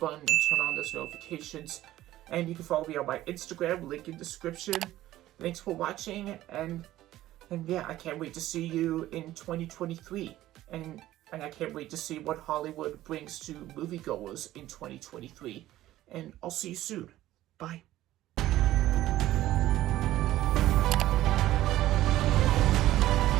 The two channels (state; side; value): quieter; left; 14.8 dB